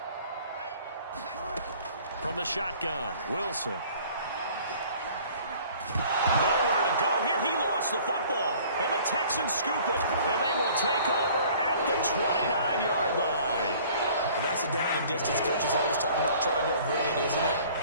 From the shotgun, Wilson. Nowhere to go here. He lost the football. And the Texans scoop it. And they will take over at the 29-yard line. Well, that's a down and distance coaches always talking about trying to avoid, isn't it?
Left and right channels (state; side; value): inverted; both; correlation -0.52